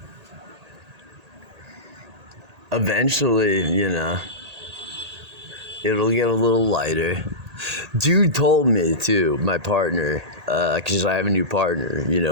Eventually, it'll get a little lighter. Dude told me too, my partner, because I have a new partner,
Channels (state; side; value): late; left; 1.8 ms